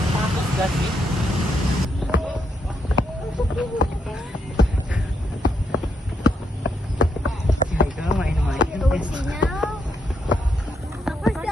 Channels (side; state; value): both; normal; correlation 0.79